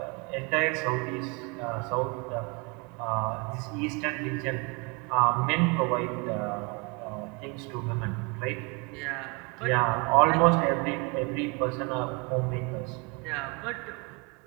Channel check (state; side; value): quieter; left; 30.6 dB